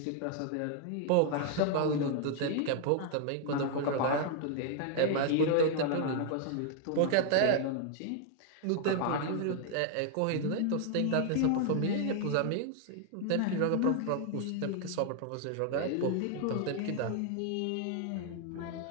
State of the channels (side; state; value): both; different; correlation 0.00